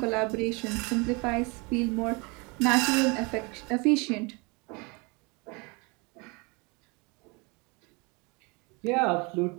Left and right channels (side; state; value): left; quieter; 29.2 dB